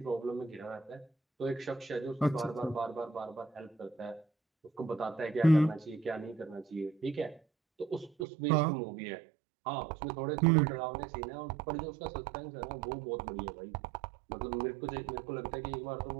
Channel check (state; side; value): drops out; left; at 8.2 s